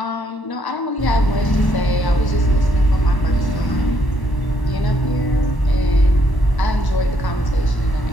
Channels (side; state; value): right; late; 1.0 ms